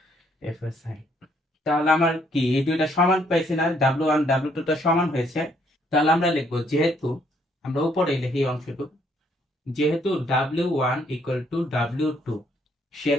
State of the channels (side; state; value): both; normal; correlation 0.68